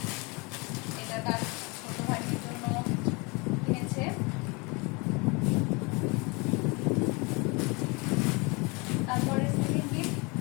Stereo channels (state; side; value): quieter; right; 28.4 dB